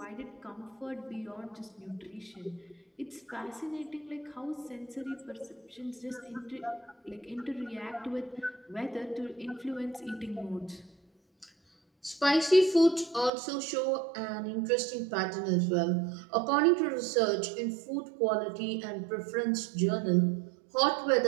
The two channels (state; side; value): drops out; left; at 13.3 s